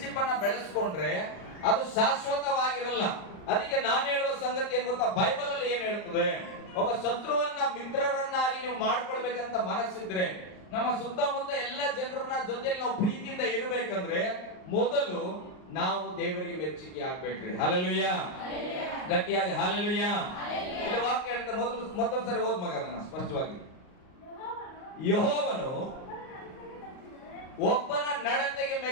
ಅನ್ನ ಬೆಳೆಸ್ಕೊಂಡ್ರೆ ಅದು ಶಾಶ್ವತವಾಗಿರಲ್ಲ. ಅದಕ್ಕೆ ನಾನು ಹೇಳುವ ಸಂಗತಿ ಏನ್ ಗೊತ್ತಾ? ಬೈಬಲ್ ಅಲ್ಲಿ ಏನ್ ಹೇಳ್ತದೆ? ಒಬ್ಬ ಶತ್ರುವನ್ನ ಮಿತ್ರರನ್ನಾಗಿ ನೀವು ಮಾಡ್ಕೊಳ್ಬೇಕಂತ ಮನಸ್ಸಿದ್ರೆ, ನಮ್ಮ ಸುತ್ತಮುತ್ತ ಎಲ್ಲ ಜನರನ್ನ ಜೊತೆಲಿ ನಾವು ಪ್ರೀತಿಯಿಂದ ಇರಬೇಕಂದ್ರೆ ಮೊದಲು ನಾವು ದೇವರಿಗೆ ಮೆಚ್ಚುಗೆ ಆಗ್ಬೇಕ್ರಿ. ಹಲ್ಲೆಲೂಯಾ. ಗಟ್ಟಿಯಾಗಿ ಹಲ್ಲೆಲೂಯಾ. ಇಲ್ಲಿ ವಾಕ್ಯ ಹೇಳ್ತಾ ಮತ್ತೊಂದು ಸರಿ ಓದ್ ಮಗ ಅದನ್ನ ಸ್ಪಷ್ಟವಾಗಿ. ಯೆಹೋವನು ಒಬ್ಬನ ನಡತೆಗೆ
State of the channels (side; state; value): right; late; 39 ms